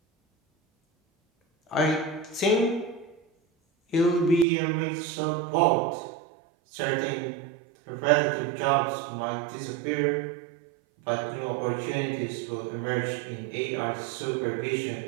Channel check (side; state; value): left; drops out; at 4.5 s